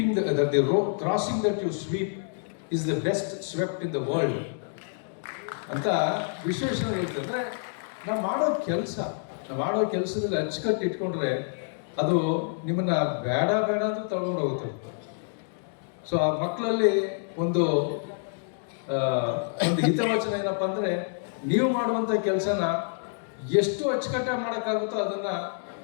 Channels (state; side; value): silent; right; digital silence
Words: that the road crossing that you sweep is the best swept in the world ಅಂತ ವಿಶ್ವೇಶ್ವರಯ್ಯ ಹೇಳ್ತಿದ್ರೆ, ನಾವು ಮಾಡೋ ಕೆಲಸದಲ್ಲಿ ಅಚ್ಚುಕಟ್ಟು ಇಟ್ಕೊಂಡ್ರೆ ಅದು ನಿಮ್ಮನ್ನ ಬೇಡ ಅಂತ ತಗೊಂಡು ಹೋಗುತ್ತೆ. ಸೊ ಆ ಮಕ್ಕಳಲ್ಲಿ ಒಂದು ಹಿತವಚನ ಏನಪ್ಪ ಅಂದರೆ, ನೀವು ಮಾಡುವಂಥ ಕೆಲಸನ ಎಷ್ಟು ಅಚ್ಚುಕಟ್ಟಾಗಿ ಮಾಡೋಕ್ಕಾಗುತ್ತೋ ಅದನ್ನು